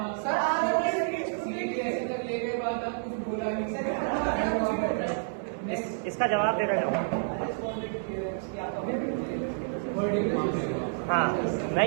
सर आज इसका जवाब देना चाहूँगा। हाँ, मैं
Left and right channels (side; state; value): left; silent; digital silence